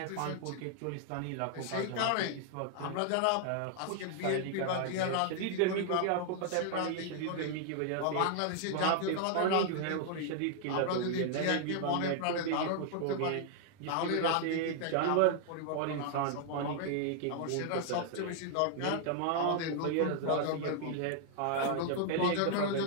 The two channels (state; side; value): different; both; correlation 0.00